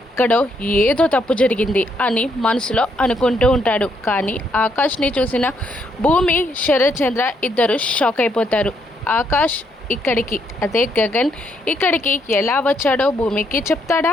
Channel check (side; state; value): both; normal; correlation 0.74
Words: ఏదో తప్పు జరిగింది అని మనసులో అనుకుంటూ ఉంటాడు. కానీ ఆకాష్ని చూసిన భూమి, శరత్ చంద్ర ఇద్దరు షాక్ అయిపోతారు. ఆకాష్ ఇక్కడికి, అదే గగన్ ఇక్కడికి ఎలా వచ్చాడో భూమికి